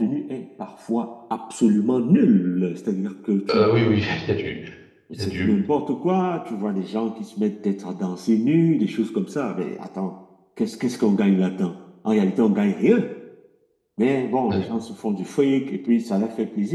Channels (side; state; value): both; identical; correlation 1.00